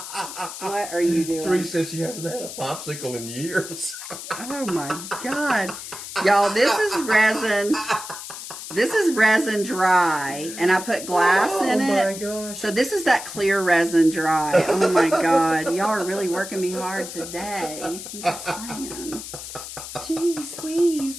What are you doing? Treese says she hasn't had a popsicle in years. Oh, my God. Y'all, this is resin. This is resin dry, and I put glass in it. Oh, my gosh. So this is that clear resin dry. Oh, my God. Y'all are really working me hard today. I'm just saying. Jeez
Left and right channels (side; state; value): left; noise; hiss, 10 dB below the sound